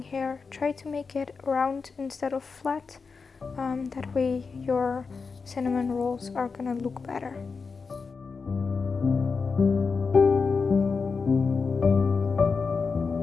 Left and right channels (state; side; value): quieter; right; 4.9 dB